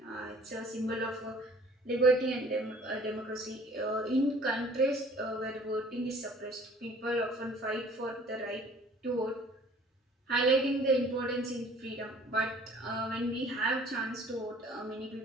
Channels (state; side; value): normal; both; correlation 0.52